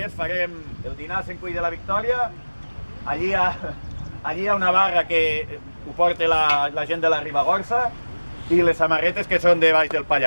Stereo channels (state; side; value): inverted; both; correlation -1.00